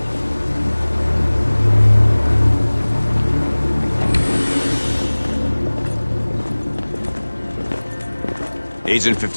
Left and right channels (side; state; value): both; inverted; correlation -1.00